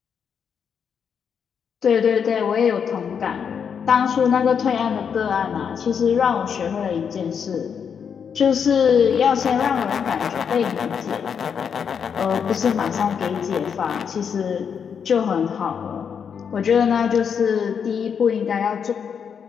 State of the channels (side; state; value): right; quieter; 7.1 dB